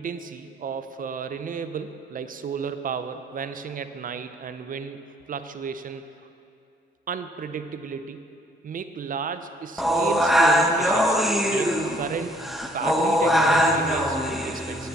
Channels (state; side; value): normal; both; correlation 0.62